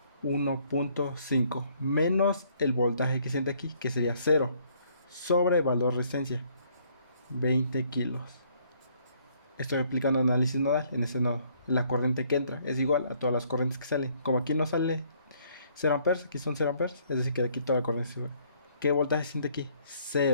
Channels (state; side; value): inverted; both; correlation -0.65